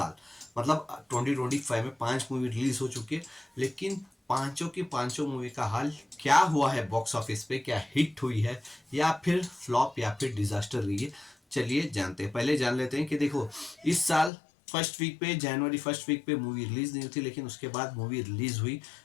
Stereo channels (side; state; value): right; drops out; at 14.3 s